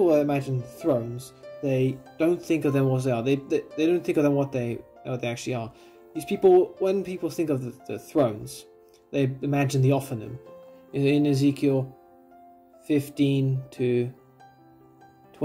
imagine thrones, they don't think of them what they are. They don't think of them what they actually are. These people, when people think of the thrones, they imagine the Ophanim. In Ezekiel 15 to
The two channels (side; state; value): both; identical; correlation 1.00